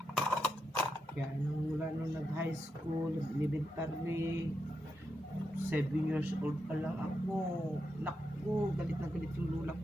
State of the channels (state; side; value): normal; both; correlation 0.85